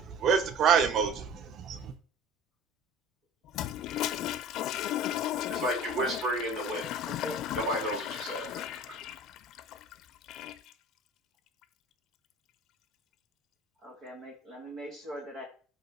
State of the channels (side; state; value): both; normal; correlation 0.41